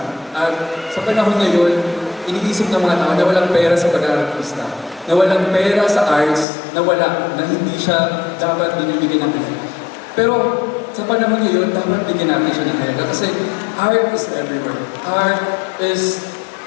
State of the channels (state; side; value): drops out; right; at 6.5 s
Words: at sa panahon ngayon, iniisip ng mga tao na walang pera sa pag-artista, na walang pera sa arts, na hindi siya dapat binibigyan ng pera. Pero sa panahon ngayon, dapat bigyan natin siya ng halaga kasi art is everywhere. Art is